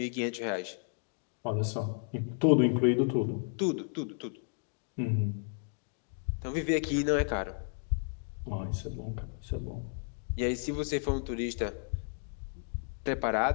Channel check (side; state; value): right; silent; 56 dB below the other